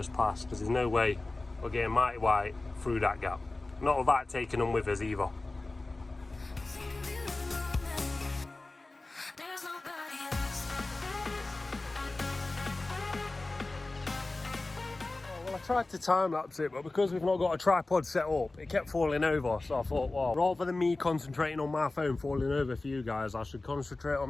past, because there's no way we're getting mighty white through that gap. Not without taking them with us either. I tried to time lapse it, but because we've not got a tripod set up, it kept falling over. So I thought, well, rather than me concentrating on my phone falling over for you guys, I should concentrate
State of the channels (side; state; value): right; quieter; 3.1 dB